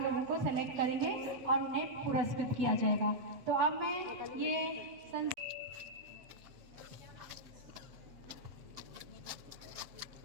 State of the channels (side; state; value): left; late; 7.7 ms